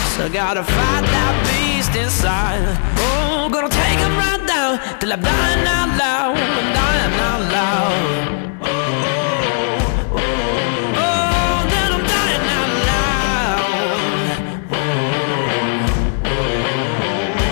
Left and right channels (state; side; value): silent; right; 68 dB below the other